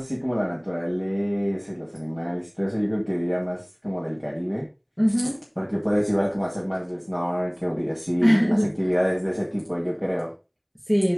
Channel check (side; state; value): both; identical; correlation 1.00